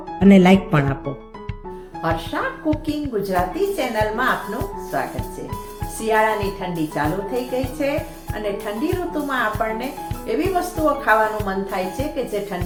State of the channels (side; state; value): both; identical; correlation 1.00